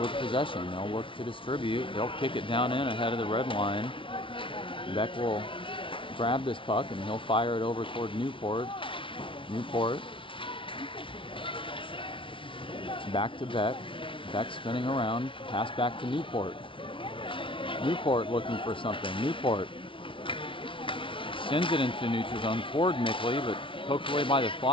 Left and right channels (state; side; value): late; right; 0.25 ms